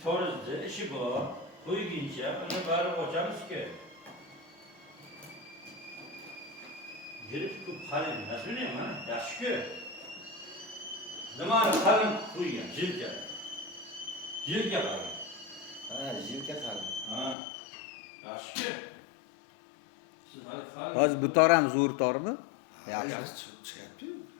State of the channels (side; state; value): right; drops out; at 17.4 s